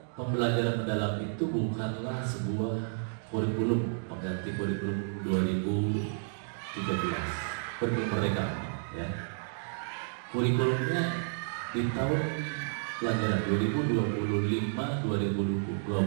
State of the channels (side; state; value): left; silent; digital silence